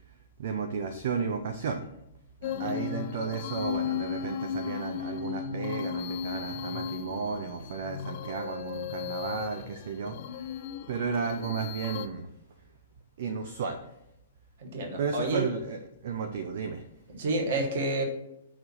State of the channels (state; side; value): inverted; both; correlation -0.42